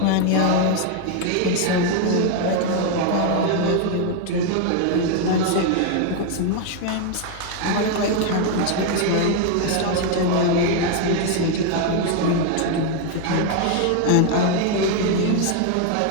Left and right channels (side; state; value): both; different; correlation 0.01